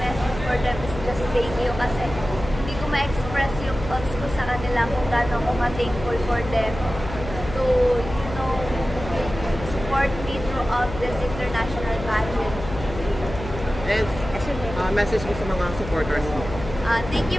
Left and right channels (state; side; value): noise; left; hum, 10 dB below the sound